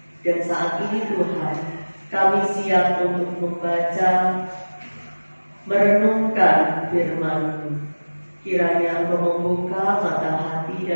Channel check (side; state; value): both; inverted; correlation -1.00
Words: Dan saat ini Tuhan, kami siap untuk membaca, merenungkan firman-Mu. Kiranya Engkau membuka mata hati